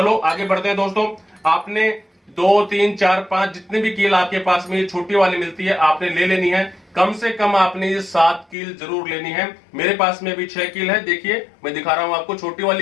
आगे बढ़ते हैं दोस्तों। आपने 2, 3, 4, 5 जितने भी कील आपके पास में ये छोटी वाली मिलती है आपने ले लेनी है। कम से कम आपने ये 7 कील जरूर लेनी है। मेरे पास में भी 6 कील है, देखिए मैं दिखा रहा हूं आपको। छोटी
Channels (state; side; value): drops out; right; at 8.6 s